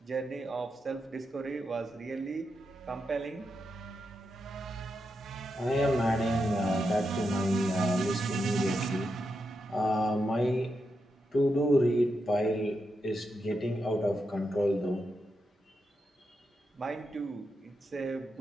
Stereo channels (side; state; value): both; normal; correlation 0.85